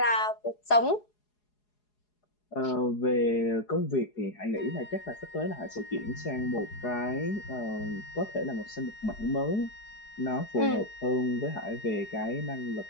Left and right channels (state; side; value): late; right; 4.8 ms